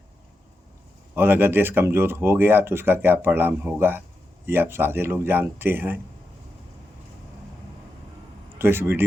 और अगर देश कमज़ोर हो गया तो उसका क्या परिणाम होगा ये आप सारे लोग जानते हैं। तो इस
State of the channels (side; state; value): both; normal; correlation 0.87